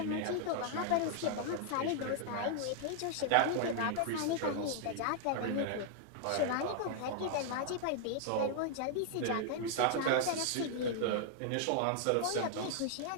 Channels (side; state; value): both; different; correlation -0.01